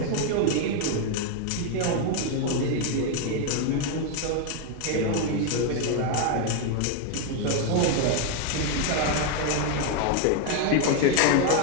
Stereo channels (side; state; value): both; different; correlation 0.01